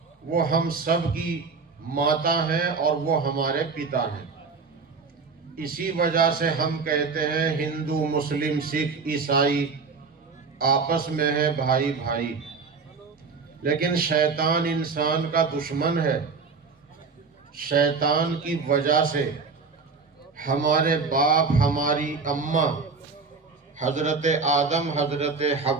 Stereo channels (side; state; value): left; quieter; 4.8 dB